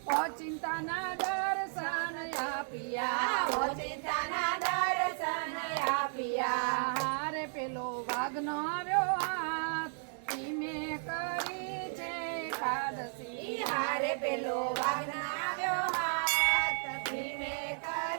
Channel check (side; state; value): left; silent; 55 dB below the other